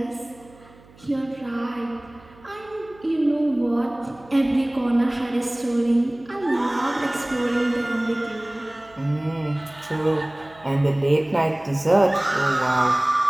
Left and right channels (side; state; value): right; noise; hum, 25 dB below the sound